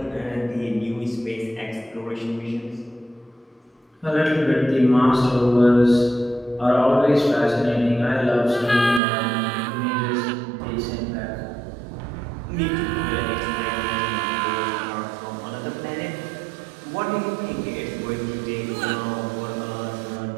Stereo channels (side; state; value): left; drops out; at 9.0 s